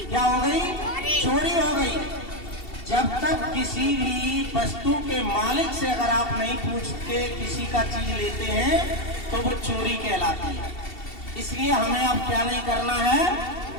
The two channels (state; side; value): late; right; 2.7 ms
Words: क्या हो गई? चोरी हो गई। जब तक किसी भी वस्तु के मालिक से अगर आप नहीं पूछ के किसी का चीज लेते हैं तो वो चोरी कहलाती है। इसलिए हमें अब क्या नहीं करना है?